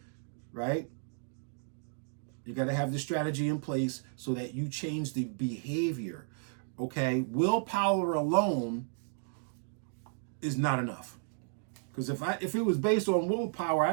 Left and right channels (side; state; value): left; silent; digital silence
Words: right? You got to have the strategy in place so that you change the behavior, okay? Willpower alone is not enough. Because if it was based on willpower,